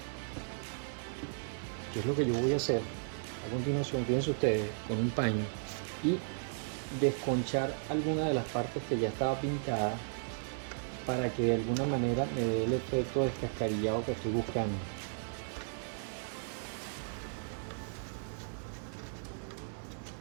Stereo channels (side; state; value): left; silent; digital silence